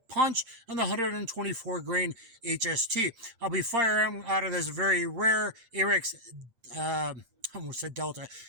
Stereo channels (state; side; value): late; left; 8.7 ms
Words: Punch and the 124 grain HST. I'll be firing out of this very rare Arex, I almost said Delta,